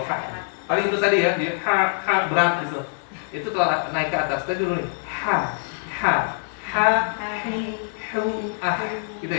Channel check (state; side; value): silent; right; 60 dB below the other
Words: ha. Paling itu tadi ya, dia ha berat gitu. Itu kalau naik ke atas tadi dulu nih. Ha hi hu gitu